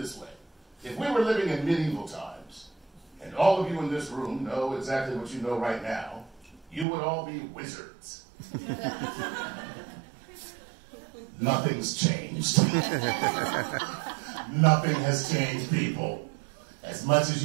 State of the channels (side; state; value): left; drops out; at 6.9 s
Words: way. If we were living in medieval times, and all of you in this room know exactly what you know right now, you would all be wizards. Nothing's changed. Nothing has changed, people. As much as